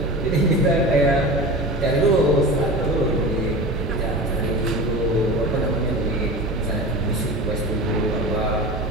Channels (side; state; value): both; normal; correlation 0.31